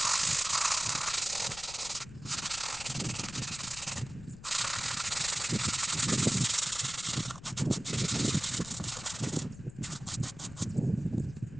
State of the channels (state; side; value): noise; left; rumble, 16 dB below the sound